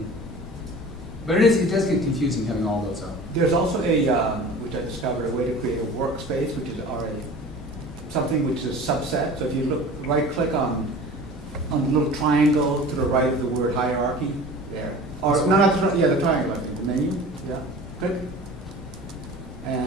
But it does get confusing having all those up. There's also which I discovered, a way to create a workspace, which is something which is a subset. So if you right-click on the little triangle to the right of the word hierarchy, there. Or no, the triangle, I think, the menu. Yeah, click.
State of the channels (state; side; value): normal; both; correlation 0.40